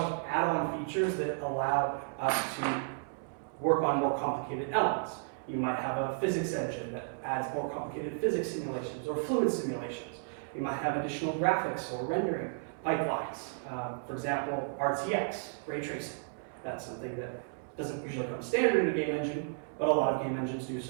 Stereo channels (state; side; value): silent; left; 56 dB below the other